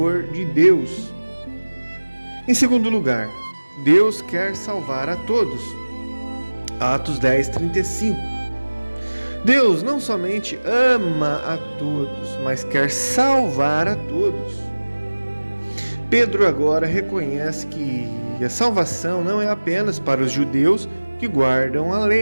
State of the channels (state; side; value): inverted; both; correlation -1.00